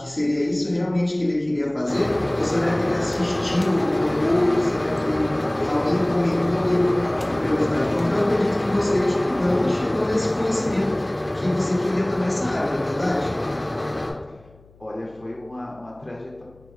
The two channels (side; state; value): left; noise; hum, 28 dB below the sound